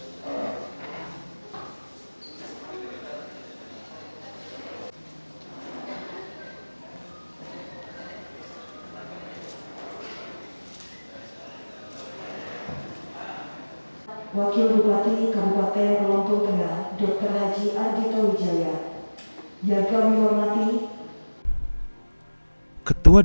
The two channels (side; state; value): both; inverted; correlation -1.00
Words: Wakil Bupati Kabupaten Lampung Tengah, Dr. Haji Ardhito Wijaya, yang kami hormati